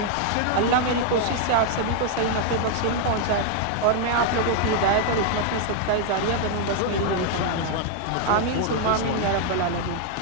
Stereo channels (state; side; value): different; both; correlation 0.00